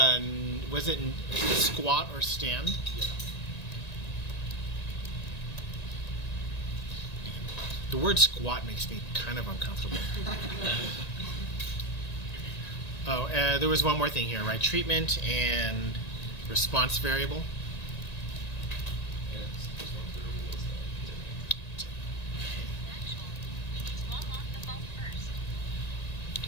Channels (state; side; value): late; right; 1.9 ms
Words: squat or stand? Yeah. The word squat makes me kind of uncomfortable. Oh, there was one more thing here, right? Treatment and response variable. And response variable was